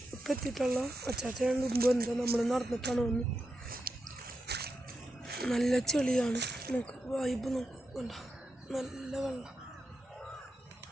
എത്തിയിട്ടുള്ള. അച്ചാച്ചൻ മുമ്പ് എന്താ നമ്മൾ നടന്നിട്ടാണ് വന്ന്. നല്ല ചെളിയാണ്, നമുക്ക് വൈബ് നോക്കണ്ട, നല്ല വെള്ളം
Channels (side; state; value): both; normal; correlation 0.87